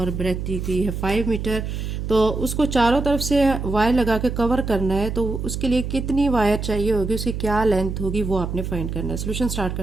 ब्रेथ दी गई है 5 मीटर। तो उसको चारों तरफ से वायर लगा के कवर करना है, तो उसके लिए कितनी वायर चाहिए होगी, उसकी क्या लेंथ होगी, वो आपने फाइंड करना है। सोल्यूशन स्टार्ट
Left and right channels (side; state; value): right; noise; hum, 4 dB below the sound